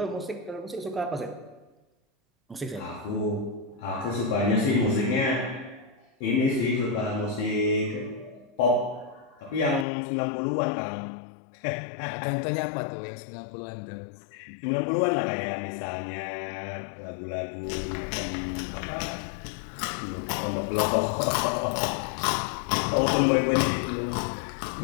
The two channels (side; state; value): right; drops out; at 9.9 s